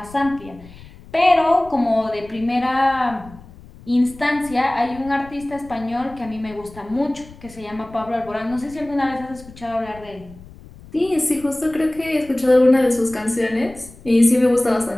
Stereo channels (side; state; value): left; noise; rumble, 20 dB below the sound